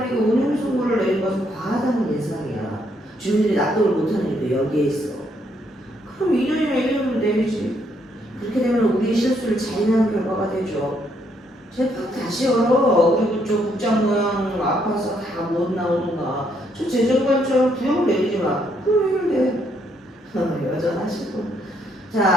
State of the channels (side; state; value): both; normal; correlation 0.72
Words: 운영 선고를 내린 것은 과하다는 예상이야. 주민들이 납득을 못하는 일도 여기에 있어. 그럼 2년이나 1년을 내리지. 그렇게 되면 우리의 실수를 자인하는 결과가 되죠. 재판 다시 열어. 그리고 저 국장 모양 아파서 다 못 나오는가. 저 재정관처럼 구형을 내리지 마. 그럼 해결돼. 여전하시고.